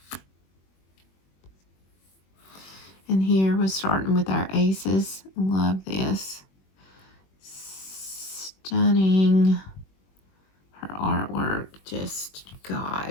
And here we're starting with our aces. Love this. Stunning. Her artwork, just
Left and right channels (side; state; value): right; late; 21 ms